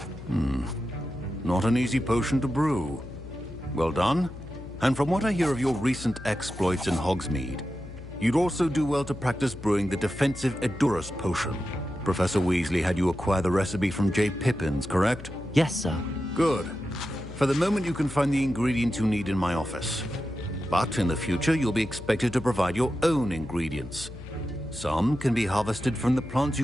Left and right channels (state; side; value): noise; left; hum, 13 dB below the sound